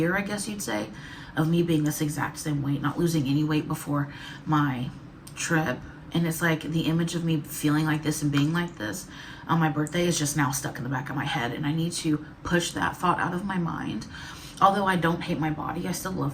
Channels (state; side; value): identical; both; correlation 1.00